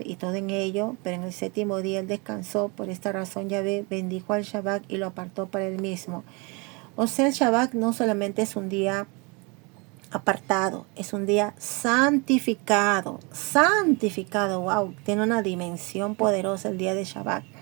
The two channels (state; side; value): quieter; left; 29.9 dB